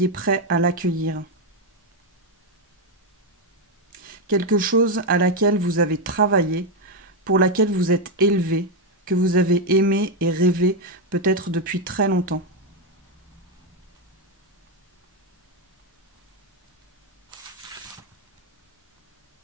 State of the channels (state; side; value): normal; both; correlation 0.05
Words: prêt à l'accueillir. Quelque chose à laquelle vous avez travaillé, pour laquelle vous êtes élevé, que vous avez aimé et rêvé peut-être depuis très longtemps.